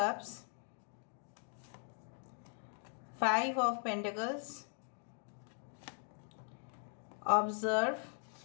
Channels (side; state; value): right; silent; 51 dB below the other